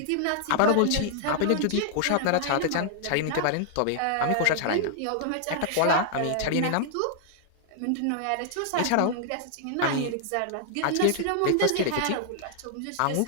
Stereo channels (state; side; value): different; both; correlation 0.00